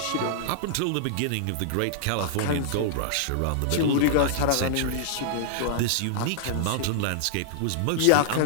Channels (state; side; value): different; both; correlation -0.01